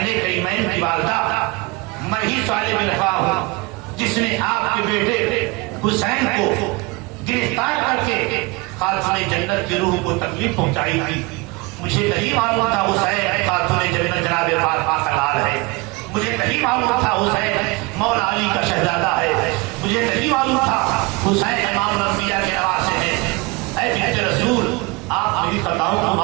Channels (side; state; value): left; quieter; 25.3 dB